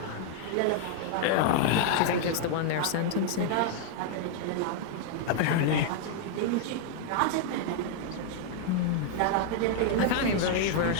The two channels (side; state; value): both; different; correlation 0.00